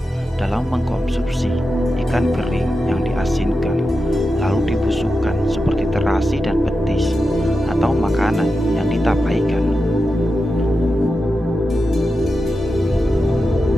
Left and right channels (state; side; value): normal; both; correlation 0.90